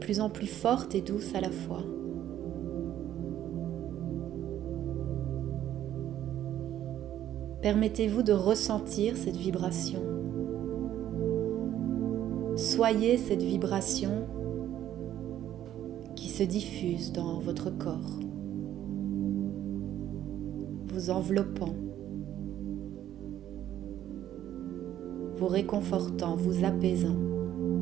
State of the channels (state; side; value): quieter; left; 11.6 dB